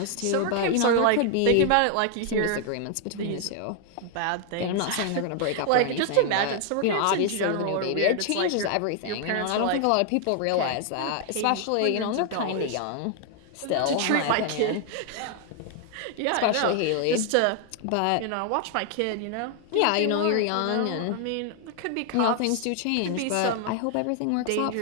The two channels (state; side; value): different; both; correlation 0.00